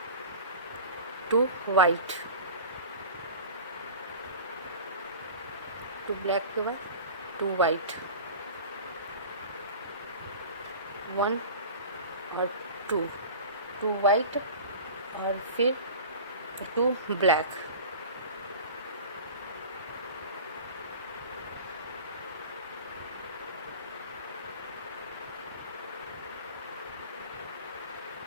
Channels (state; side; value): inverted; both; correlation -0.37